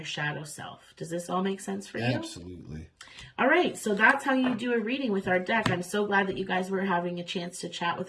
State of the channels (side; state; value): both; identical; correlation 1.00